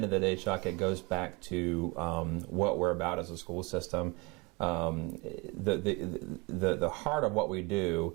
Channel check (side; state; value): left; quieter; 27.4 dB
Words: of the day, Chuck, it goes back to what we're about as a school system. The heart of what we